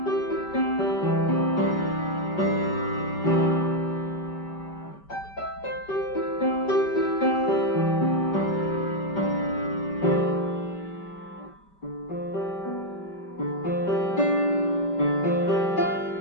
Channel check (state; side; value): late; right; 5.2 ms